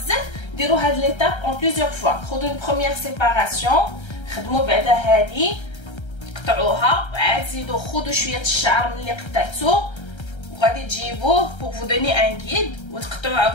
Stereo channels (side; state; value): right; late; 1.3 ms